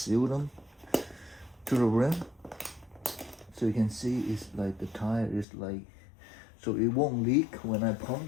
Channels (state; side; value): drops out; right; at 5.5 s